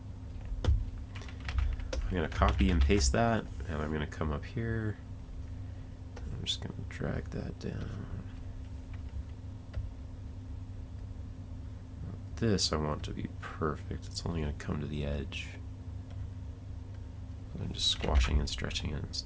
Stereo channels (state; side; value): identical; both; correlation 1.00